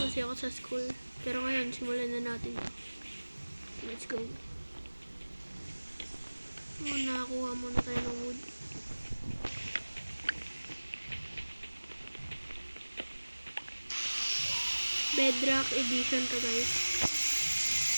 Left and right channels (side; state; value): both; inverted; correlation -1.00